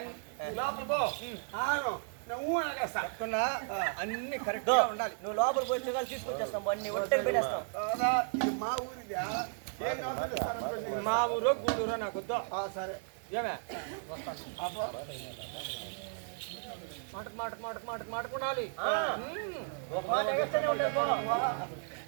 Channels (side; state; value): left; silent; 55 dB below the other